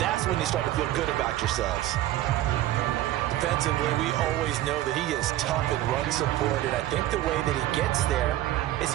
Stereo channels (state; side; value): quieter; left; 14.5 dB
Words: That's when you start to feel good about yourselves. Defensively, we always know that he is tough in run support, and I think the way that he gets there is